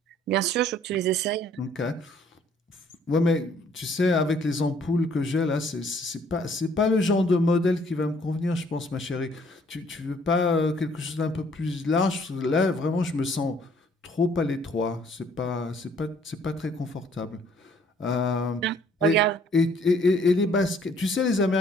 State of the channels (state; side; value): normal; both; correlation 0.61